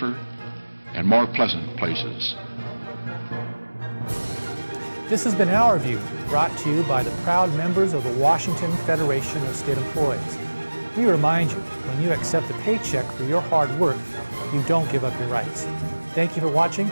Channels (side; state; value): both; inverted; correlation -1.00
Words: and more pleasant places. This has been Our View, brought to you by the proud members of the Washington Federation of State Employees. We remind you, when you accept a paycheck for your hard work, you don't give up your rights. Thank you for watching.